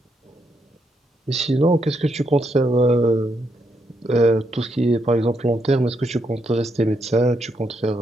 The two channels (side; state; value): both; normal; correlation 0.79